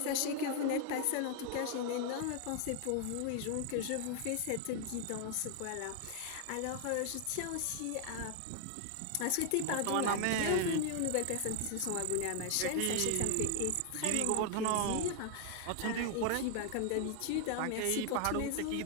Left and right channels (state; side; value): different; both; correlation 0.00